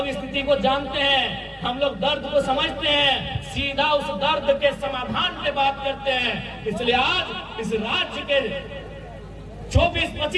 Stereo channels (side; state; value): both; identical; correlation 1.00